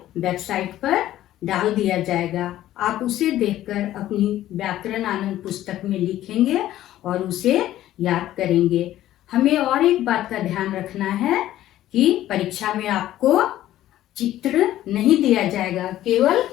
वेबसाइट पर डाल दिया जाएगा। आप उसे देखकर अपनी व्याकरण आनंद पुस्तक में लिखेंगे और उसे याद करेंगे। हमें और एक बात का ध्यान रखना है कि परीक्षा में आपको चित्र नहीं दिया जाएगा, केवल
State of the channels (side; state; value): right; quieter; 13.6 dB